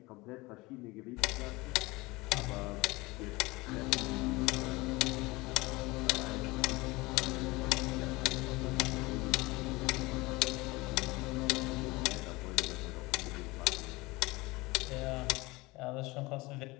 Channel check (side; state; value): right; quieter; 22.4 dB